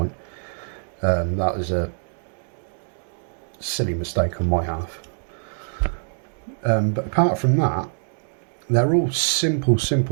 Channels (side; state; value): left; silent; digital silence